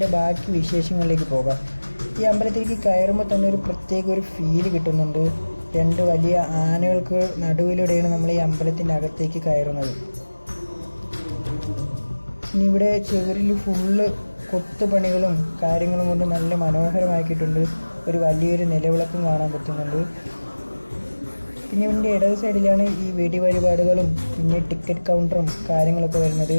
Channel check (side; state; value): both; inverted; correlation -1.00